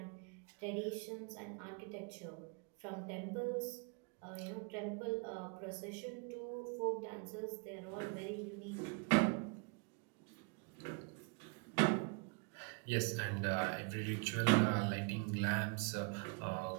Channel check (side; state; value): left; quieter; 33.5 dB